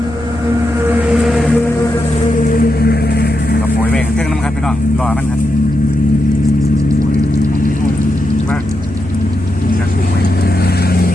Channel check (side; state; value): right; noise; hum, 15 dB below the sound